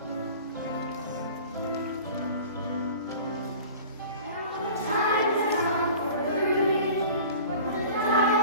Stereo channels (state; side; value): inverted; both; correlation -0.42